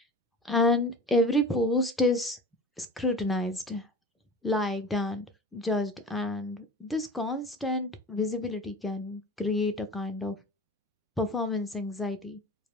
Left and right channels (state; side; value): normal; both; correlation 0.36